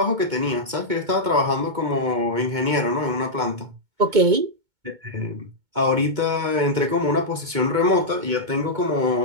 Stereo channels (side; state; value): left; late; 2.2 ms